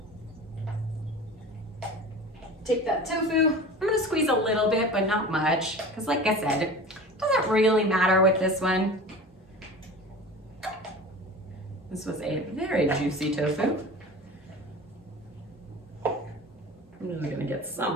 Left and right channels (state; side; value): normal; both; correlation 0.36